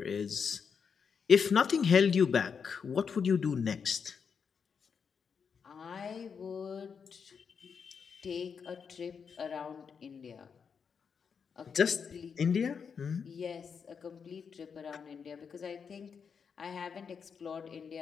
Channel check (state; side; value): quieter; right; 6.4 dB